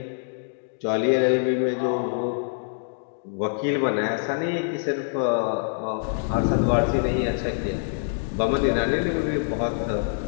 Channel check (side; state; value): right; silent; digital silence